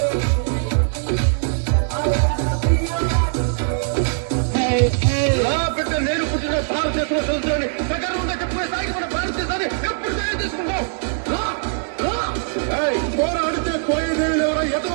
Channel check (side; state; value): left; silent; 60 dB below the other